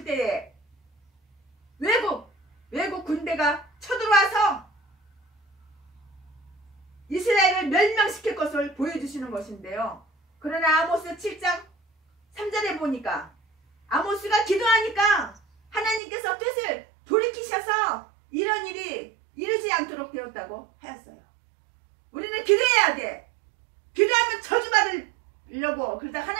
때에 외국 군대가 쳐들어와서 이스라엘을 멸망시킬 것을 보여주시는 것인데요. 그러나 아모스 7장 3절에 보니까 아모스가 기도하니까 하나님께서 뜻을 돌이키셔서 이런 일이 이르지 않도록 되었다고 하였어요. 우리는 기도해야 돼. 기도하면 저주받으려고 그러다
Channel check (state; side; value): drops out; left; at 16.0 s